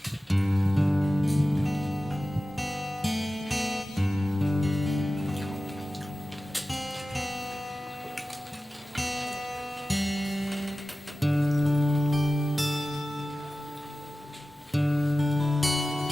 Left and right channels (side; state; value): both; normal; correlation 0.95